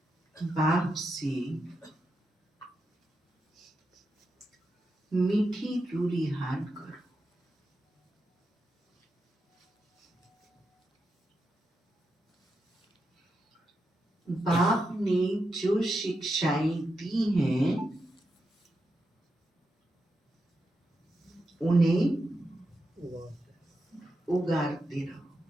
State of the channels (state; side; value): normal; both; correlation 0.87